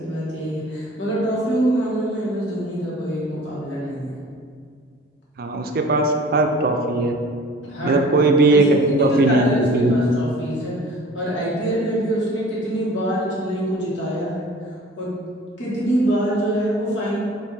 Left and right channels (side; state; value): both; normal; correlation 0.46